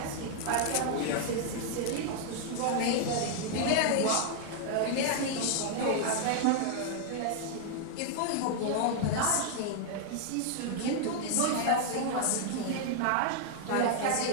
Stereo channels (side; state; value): both; different; correlation 0.00